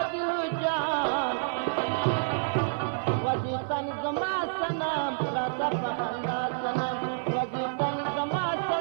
جان وزی تن زما سنم راتا پخندا سنم وزی تن زما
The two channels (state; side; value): silent; left; digital silence